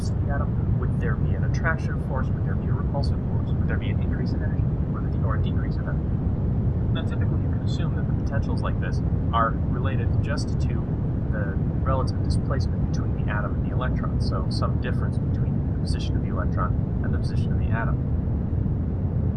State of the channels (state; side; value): identical; both; correlation 1.00